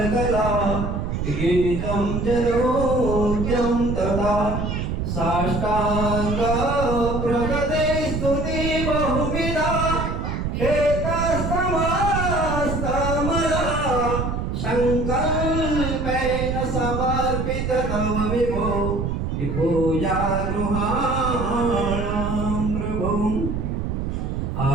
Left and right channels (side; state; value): right; noise; rumble, 2 dB below the sound